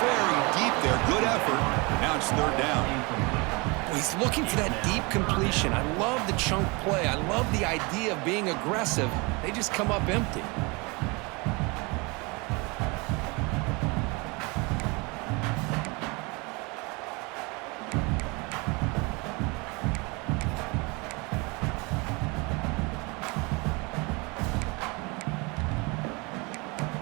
very deep there. Good effort. Now it's third down. He's looking for that deep completion. I love the chunk play. I love the idea of being aggressive. They just come up empty.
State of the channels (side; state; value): left; quieter; 27.7 dB